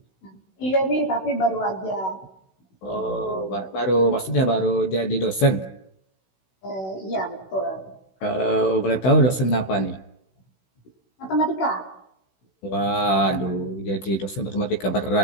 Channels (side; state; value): right; late; 16 ms